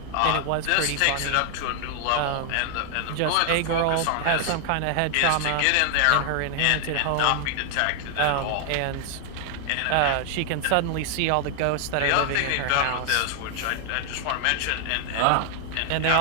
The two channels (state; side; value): different; both; correlation 0.00